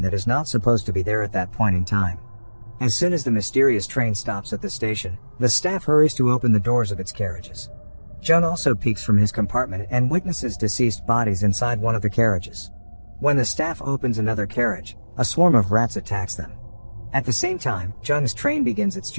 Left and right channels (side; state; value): both; inverted; correlation -1.00